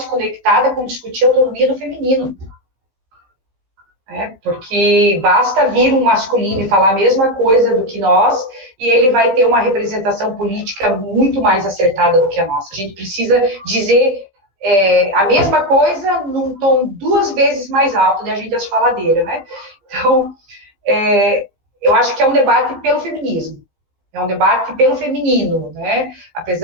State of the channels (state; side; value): late; left; 15 ms